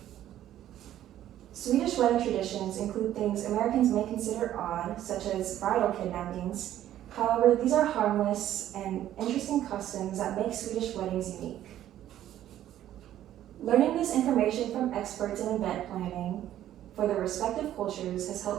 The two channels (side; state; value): left; quieter; 12.2 dB